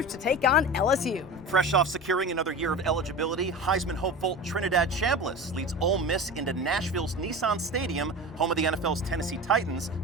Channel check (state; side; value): normal; both; correlation 0.31